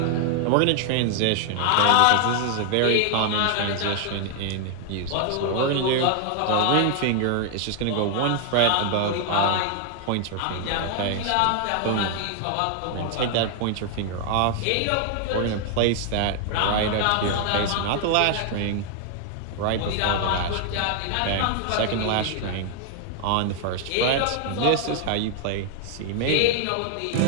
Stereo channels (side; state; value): both; different; correlation 0.00